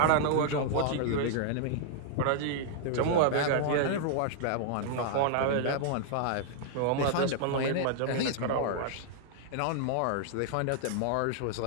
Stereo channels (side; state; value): both; different; correlation -0.01